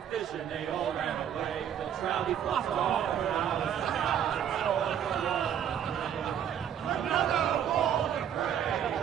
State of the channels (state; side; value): quieter; left; 9.3 dB